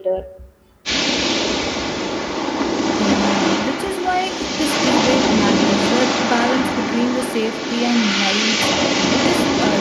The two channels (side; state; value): both; identical; correlation 1.00